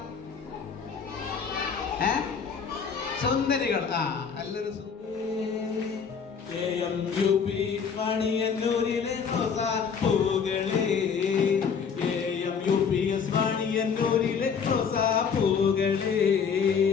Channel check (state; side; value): quieter; right; 6.4 dB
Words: സുന്ദരികൾ. നല്ലൊരു വാണിയന്നൂരിലെ റോസാപ്പൂകളെ, വാണിയന്നൂരിലെ റോസാപ്പൂകളെ.